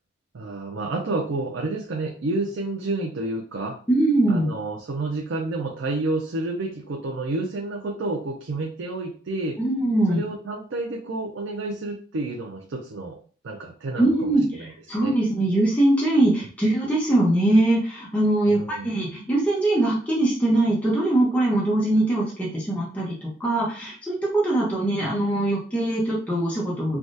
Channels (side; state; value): both; normal; correlation 0.74